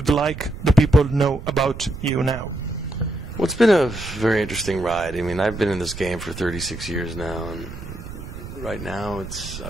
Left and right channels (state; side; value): noise; right; rumble, 11 dB below the sound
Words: like the people to know about you now? Well, it's been a very interesting ride. I mean, I've been in this game for 36 years now, and right now